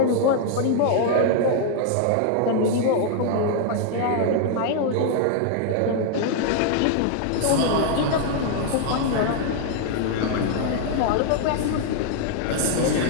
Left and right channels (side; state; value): both; different; correlation 0.00